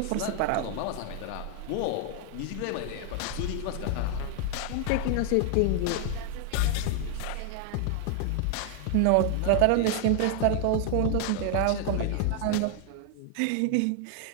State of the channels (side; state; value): both; different; correlation 0.00